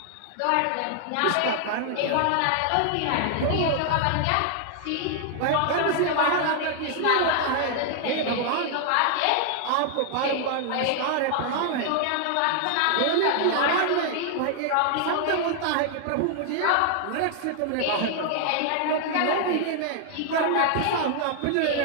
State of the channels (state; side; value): different; both; correlation 0.00